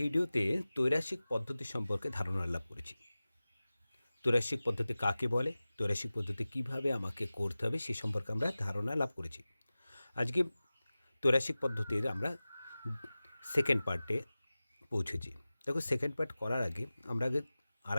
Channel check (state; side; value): inverted; both; correlation -0.97